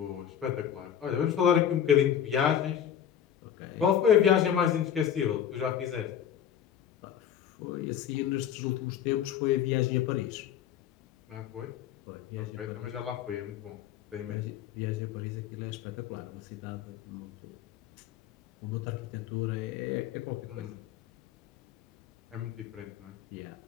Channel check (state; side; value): quieter; right; 9.5 dB